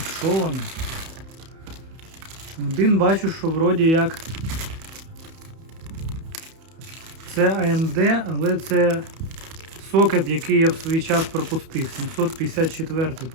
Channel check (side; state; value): left; late; 31 ms